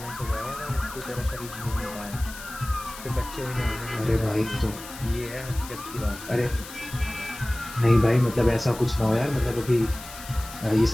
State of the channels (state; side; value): noise; left; hiss, 14 dB below the sound